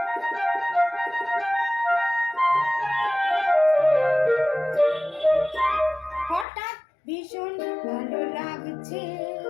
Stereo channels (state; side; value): drops out; right; at 6.5 s